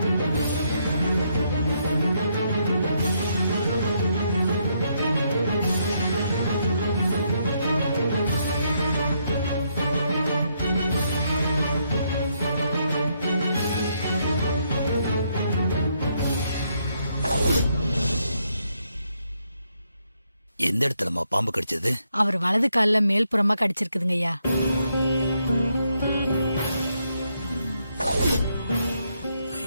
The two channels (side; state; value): both; inverted; correlation -0.76